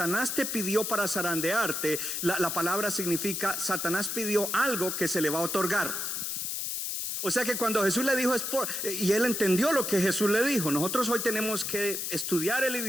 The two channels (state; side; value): noise; left; hiss, 2 dB below the sound